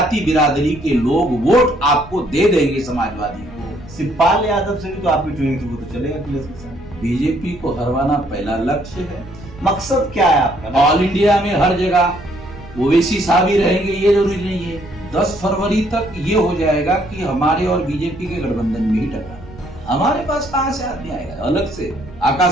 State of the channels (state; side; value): noise; right; rumble, 18 dB below the sound